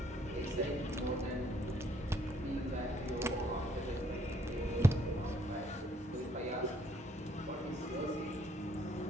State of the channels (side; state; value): both; normal; correlation 0.67